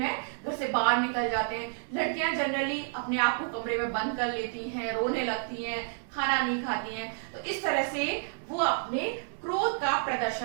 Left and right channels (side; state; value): left; silent; 58 dB below the other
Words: घर से बाहर निकल जाते हैं। लड़कियां जनरली अपने आप को कमरे में बंद कर लेती हैं, रोने लगती हैं, खाना नहीं खाती हैं। तो इस तरह से वो अपने क्रोध का